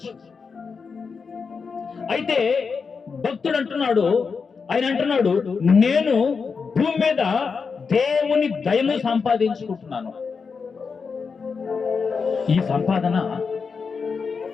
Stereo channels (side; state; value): right; quieter; 5.3 dB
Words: అయితే భక్తుడు అంటున్నాడు, ఆయన అంటున్నాడు, నేను భూమి మీద దేవుని దయను సంపాదించుకుంటున్నాను. ఈ సంపాదన